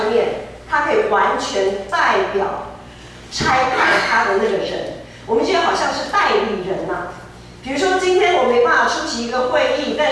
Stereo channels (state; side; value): identical; both; correlation 1.00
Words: 面，他可以完全代表差派他的那个人，我们就好像是代理人嘛。比如说今天我没办法出席一个会议，但